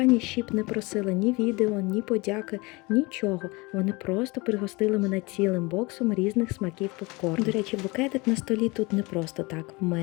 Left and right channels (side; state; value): right; quieter; 24.9 dB